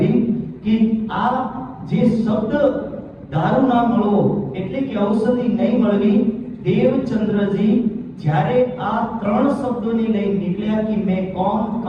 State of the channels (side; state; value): both; identical; correlation 1.00